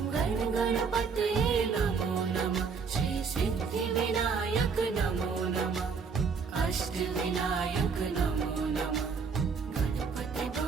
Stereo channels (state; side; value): quieter; left; 5.5 dB